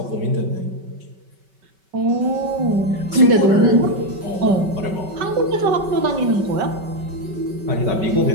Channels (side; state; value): left; late; 5.2 ms